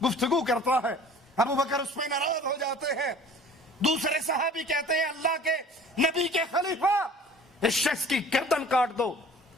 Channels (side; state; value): both; normal; correlation 0.47